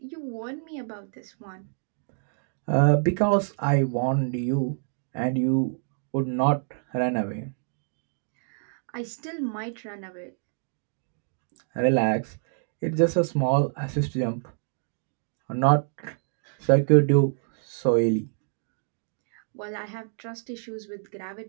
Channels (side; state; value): left; silent; digital silence